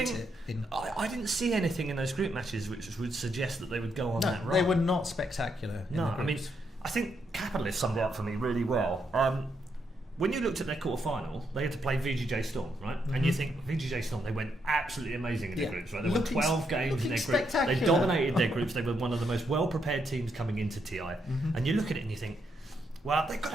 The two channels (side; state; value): both; normal; correlation 0.78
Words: I didn't see anything in those group matches which would suggest that they would go on that run. They were not spectacular. I mean, I think Capitalist summed it up for me really well. When you looked at their quarter-final, they had to play VGJ Storm, right? And you think, VGJ Storm, they went absolutely amazing in their groups, right? They won 12 games in their groups. They dominated their groups. They were one of the most well-prepared teams coming into TI. And you look at it and you think, well, they've got